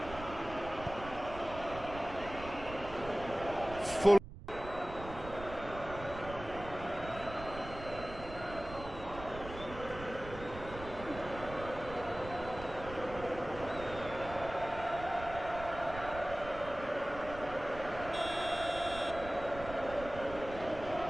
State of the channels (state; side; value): noise; right; rumble, 12 dB below the sound